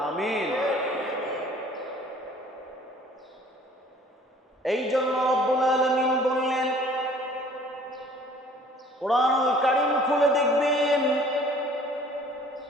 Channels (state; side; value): normal; both; correlation 0.53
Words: আমিন। এই জন্য রব্বুল আলামিন বললেন, কোরআনুল কারীম খুলে দেখবেন